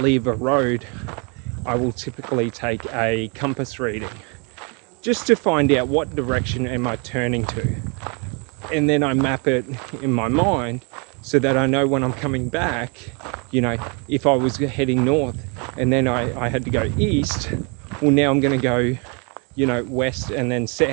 a road, I will typically take a compass reading just to find out what direction am I turning to. And then I map it in my mind so that I know when I'm coming back, if I was heading north and then I had to go east, well, now I'm going to go, west and then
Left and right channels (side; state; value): left; quieter; 34.1 dB